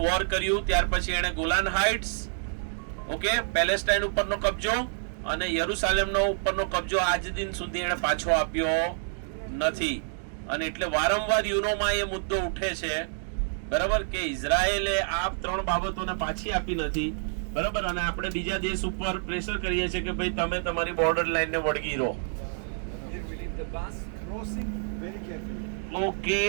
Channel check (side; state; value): left; silent; digital silence